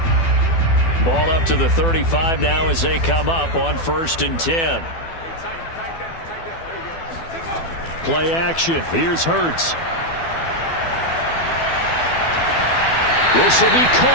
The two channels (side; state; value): right; late; 12 ms